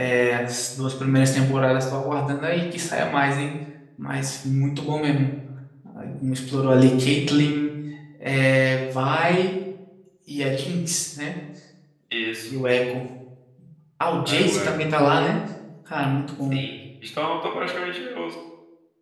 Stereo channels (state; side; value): identical; both; correlation 1.00